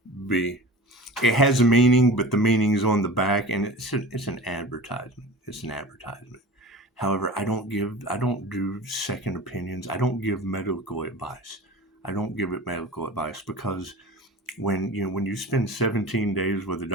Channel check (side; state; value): both; normal; correlation 0.36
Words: It has a meaning, but the meaning's on the back, and it's an advertisement. It's an advertisement. However, I don't do second opinions. I don't give medical advice. I don't give it medical advice because when you spend 17 days with a